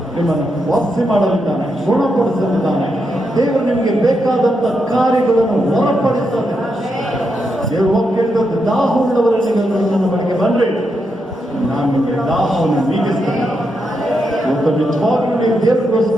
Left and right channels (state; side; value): normal; both; correlation 0.83